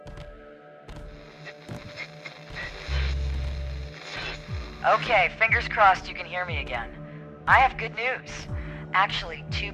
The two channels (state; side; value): identical; both; correlation 1.00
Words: Okay, fingers crossed you can hear me again. I have good news. Actually, two